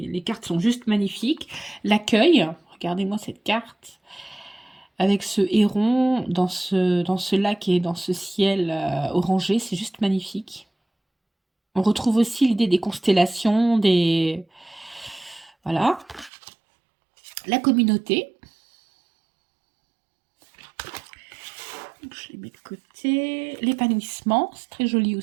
les cartes sont juste magnifiques. L'accueil. Regardez-moi cette carte. Avec ce héron dans ce lac et dans ce ciel orangé. C'est juste magnifique. On retrouve aussi l'idée des constellations, Voilà. La communauté. Donc, je les mets de côté. L'épanouissement, c'est très joli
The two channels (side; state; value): left; drops out; at 16.3 s